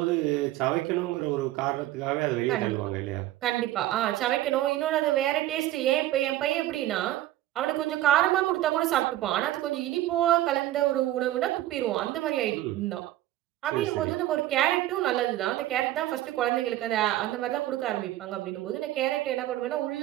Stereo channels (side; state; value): left; quieter; 14.7 dB